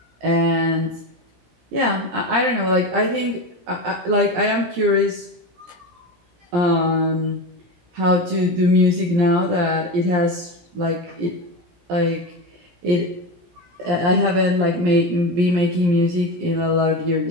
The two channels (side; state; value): left; late; 17 ms